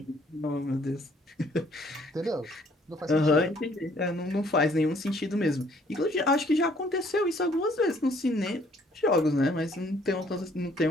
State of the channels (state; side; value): normal; both; correlation 0.62